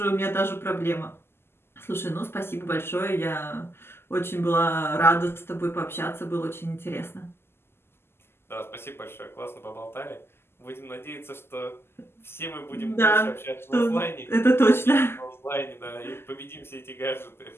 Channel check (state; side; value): late; right; 0.12 ms